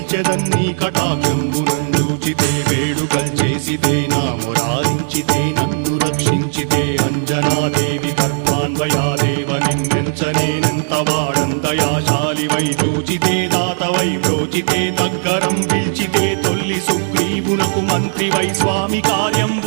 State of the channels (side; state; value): left; silent; 68 dB below the other